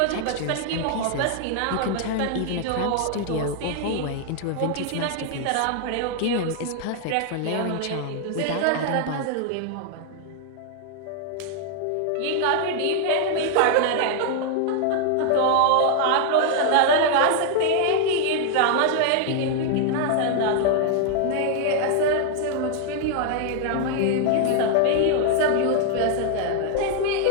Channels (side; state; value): both; different; correlation 0.00